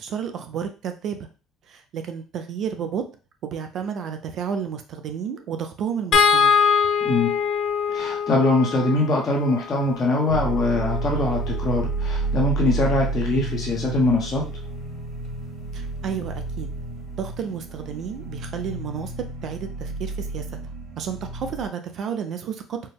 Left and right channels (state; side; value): normal; both; correlation 0.50